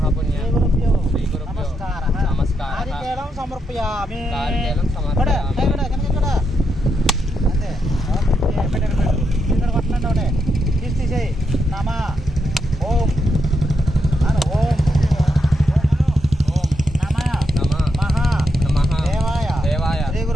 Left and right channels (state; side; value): normal; both; correlation 0.82